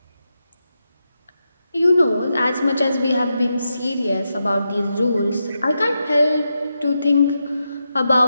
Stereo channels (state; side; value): inverted; both; correlation -0.87